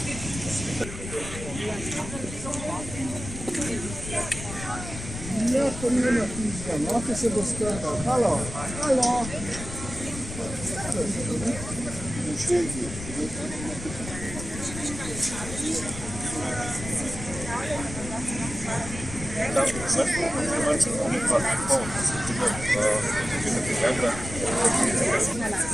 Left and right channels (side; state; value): left; noise; rumble, 9 dB below the sound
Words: to nie ma pizza, no to się dostarcza. Halo, halo.